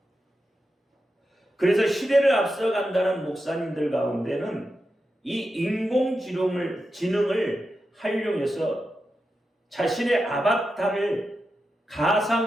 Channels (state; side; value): normal; both; correlation 0.89